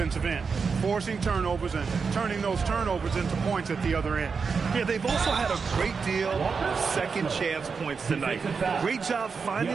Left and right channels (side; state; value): left; quieter; 5.3 dB